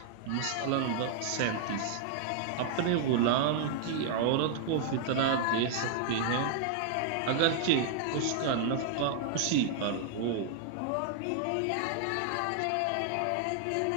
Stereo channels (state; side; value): different; both; correlation -0.01